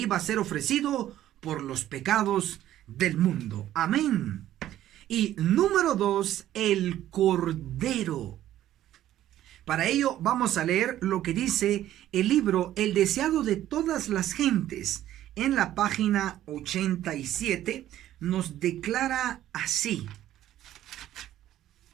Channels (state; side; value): quieter; left; 12.8 dB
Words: a ser ofrecido por los pecados del mundo. Amén. Y número 2, el Cordero. Para ello vamos a leer lo que dice el libro El deseado de todas las gentes. En la página 87 nos declara así,